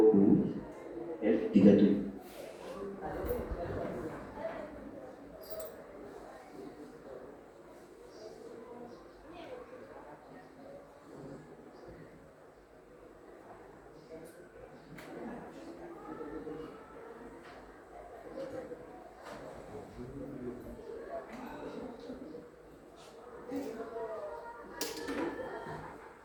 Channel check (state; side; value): identical; both; correlation 1.00